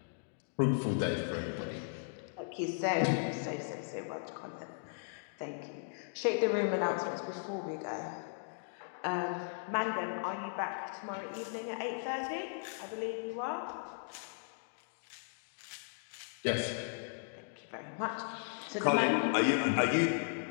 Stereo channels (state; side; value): silent; right; digital silence